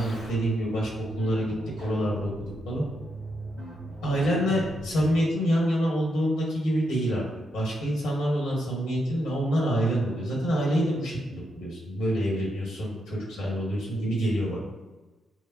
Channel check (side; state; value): both; normal; correlation 0.81